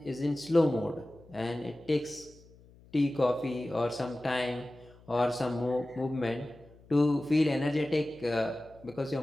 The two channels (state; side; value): noise; left; hum, 25 dB below the sound